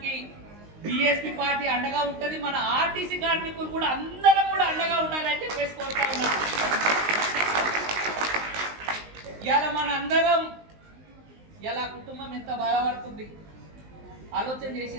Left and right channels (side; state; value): left; late; 19 ms